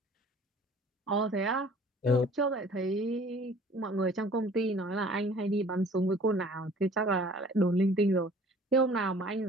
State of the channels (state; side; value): normal; both; correlation 0.51